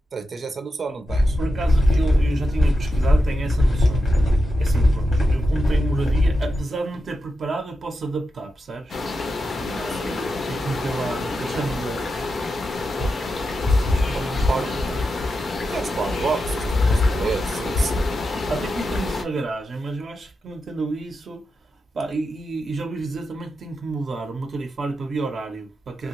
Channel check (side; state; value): both; normal; correlation 0.89